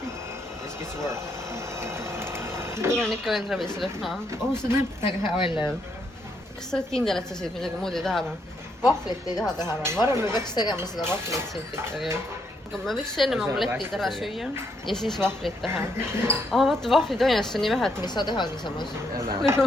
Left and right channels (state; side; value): normal; both; correlation 0.75